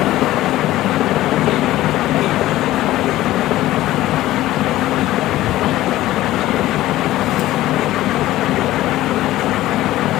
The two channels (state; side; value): quieter; right; 15.5 dB